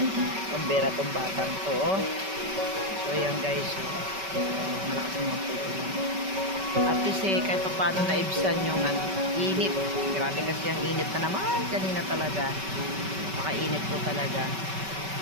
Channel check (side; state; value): left; late; 5.2 ms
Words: Pambera tong batang to, oh. So, ayan guys, malakas naman po ulan. At kasi kahit pa paano naibsan yung init. Grabe kasi ang init na naman kanina talaga. Makainit po talaga.